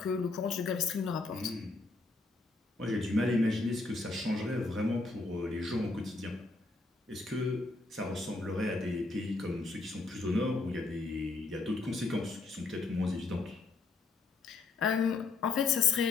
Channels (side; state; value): right; quieter; 3.6 dB